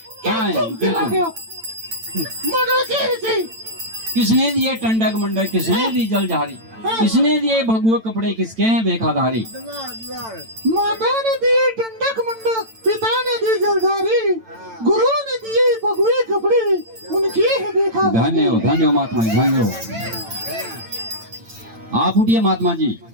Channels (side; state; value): left; late; 8.9 ms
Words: हाँ, क्या तुम चला गए हो? मंडल के से किसने दिए टंडक मंडक, किसने दी जल झारी, किसने दिए भगुआ कपड़े, किसके हैं बेखादारी? माता ने दिए टंडक मंडक, पिता ने दी जलधारी, गुरु ने दिए भगवे कपड़े, उनकी है देखा। धन्यवाद धन्यवाद महात्मा जी, धन्यवाद। आप उठिए महात्मा जी,